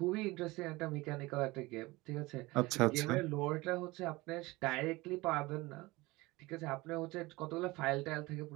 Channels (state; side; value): quieter; left; 21.5 dB